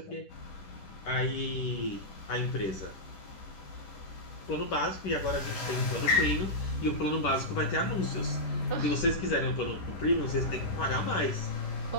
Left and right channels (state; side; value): late; right; 10 ms